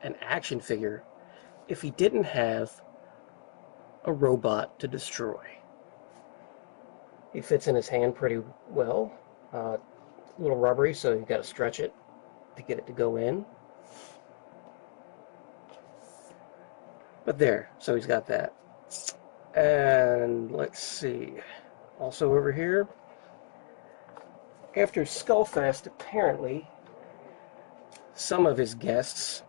an action figure if he didn't have a robot to destroy? He fits in his hand pretty well. A little rubbery, so you've got to stretch it to get it to go in. But there, so he's got that. And let's see. Also over here, after Skullfest, apparently some of his guests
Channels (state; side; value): silent; right; 56 dB below the other